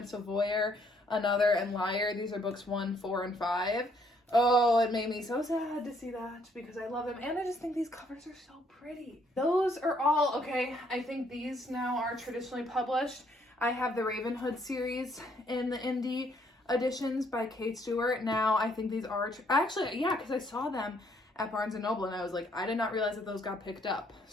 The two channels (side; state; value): both; normal; correlation 0.68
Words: so Voyeur, Another, and Liar. These are books 1, 4, and 5. Oh, it made me so sad to see that because I love them. And I just think these covers are so pretty. Those are all, okay, I think these now are traditionally published. I have the Ravenhood series in the indie editions by Kate Stewart. Now I think these are, actually, yeah, because I saw them at Barnes & Noble and I was like, I did not realize that those got picked up.